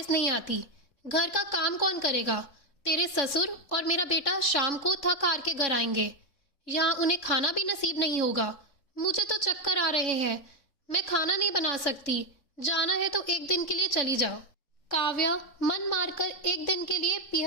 नहीं आती। घर का काम कौन करेगा? तेरे ससुर और मेरा बेटा शाम को थक हार के घर आएंगे, यहाँ उन्हें खाना भी नसीब नहीं होगा। मुझे तो चक्कर आ रहे हैं, मैं खाना नहीं बना सकती। जाना है तो एक दिन के लिए चली जाओ। काव्या मन मारकर एक दिन के लिए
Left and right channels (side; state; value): right; late; 3.6 ms